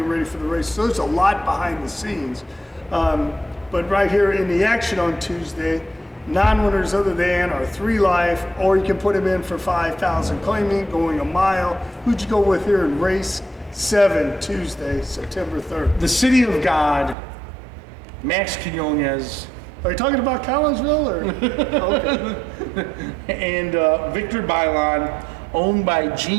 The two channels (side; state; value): left; drops out; at 17.2 s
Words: ready for the race. So there's a lot behind the scenes. But right here in the action on Tuesday, non-winners other than are 3 life, or you can put them in for 5,000 claiming, going a mile. Who'd you go with here in race 7 Tuesday, September 3rd? The City of God, Max Quinones. Are you talking about Collinsville or? Okay. And Victor Bailon, owned by